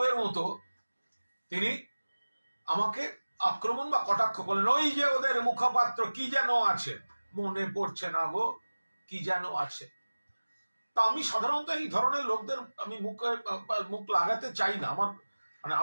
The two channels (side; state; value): both; inverted; correlation -1.00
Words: মতো তিনি আমাকে আক্রমণ বা কটাক্ষ করলেন। ওই যে ওদের মুখপাত্র কি যেন আছে, মনে পড়ছে না গো, কি যেন আছে। তা আমি সাধারণত এই ধরনের লোকদের আমি মুখ লাগাতে চাই না, আমার মানে